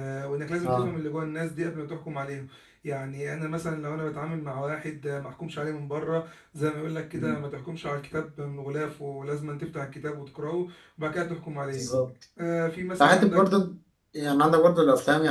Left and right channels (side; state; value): both; identical; correlation 1.00